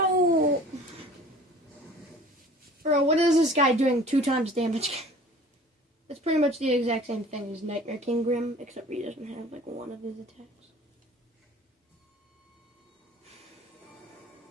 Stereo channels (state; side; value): normal; both; correlation 0.47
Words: Bro, what is this guy doing 2 times damage? It's pretty much the exact same thing as Nightmare King Grim, except he doesn't have like one of his attacks.